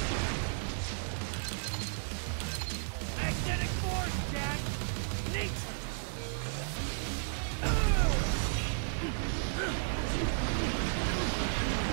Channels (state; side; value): silent; left; digital silence